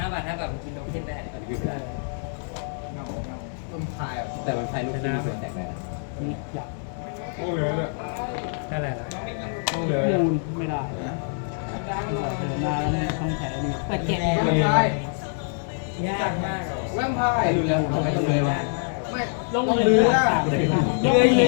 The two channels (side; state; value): right; silent; 62 dB below the other